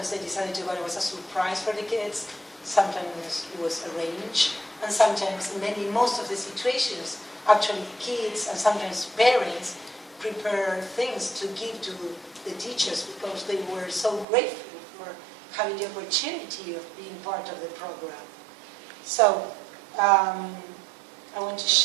they decided to go, it was a surprise for the kids. Sometimes it was arranged. And sometimes, most of the situations, actually kids and sometimes parents prepare things to give to the teachers because they were so grateful for having the opportunity of being part of the program. So, I want to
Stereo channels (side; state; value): left; drops out; at 14.2 s